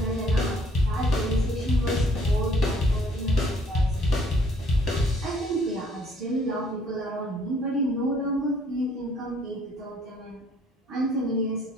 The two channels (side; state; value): both; normal; correlation 0.62